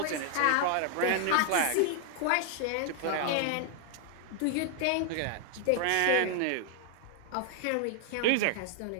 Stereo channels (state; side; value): different; both; correlation 0.00